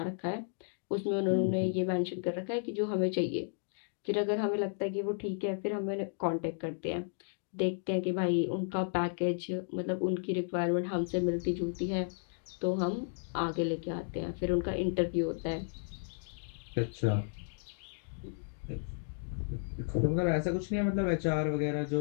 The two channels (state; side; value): silent; right; digital silence